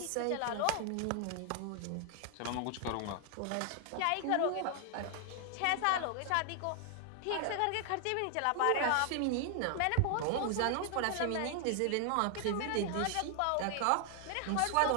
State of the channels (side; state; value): both; different; correlation 0.00